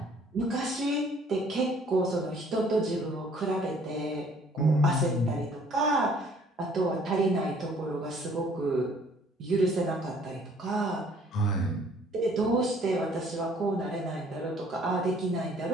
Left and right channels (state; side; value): normal; both; correlation 0.58